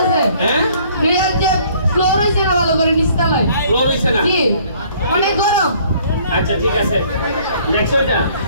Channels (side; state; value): both; inverted; correlation -0.59